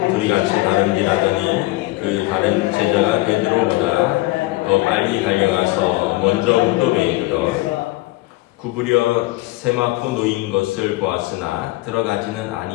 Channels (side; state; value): right; quieter; 19.7 dB